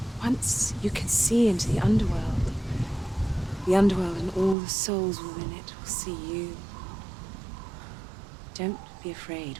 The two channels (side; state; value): left; drops out; at 4.5 s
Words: Once you can see into the underworld. The underworld and all the souls within it will see you. Don't be afraid